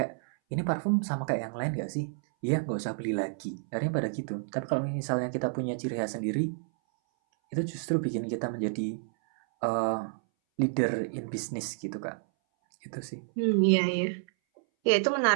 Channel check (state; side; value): silent; left; 58 dB below the other